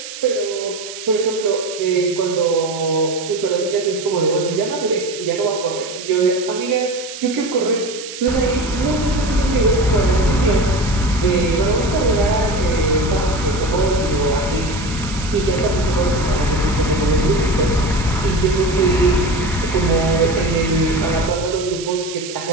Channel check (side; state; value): right; noise; hiss, 11 dB below the sound